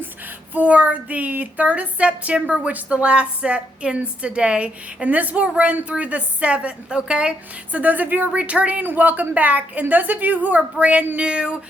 for the 3rd of September, which the last set ends today. And this will run through the 7th, okay? So those of you who are returning, welcome back. And those of you who are brand new,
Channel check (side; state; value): both; normal; correlation 0.76